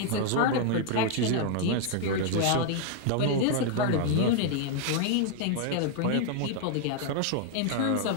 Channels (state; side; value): different; both; correlation 0.00